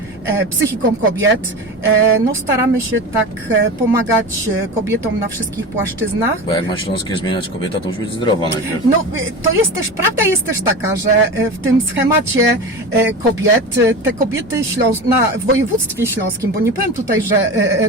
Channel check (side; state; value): both; normal; correlation 0.28